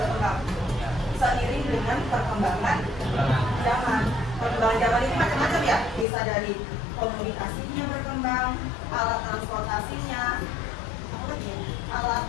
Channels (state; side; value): drops out; right; at 6.1 s